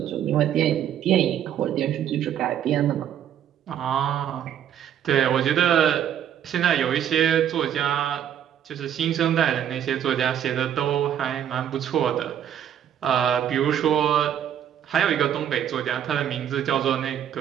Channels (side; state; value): left; quieter; 9.8 dB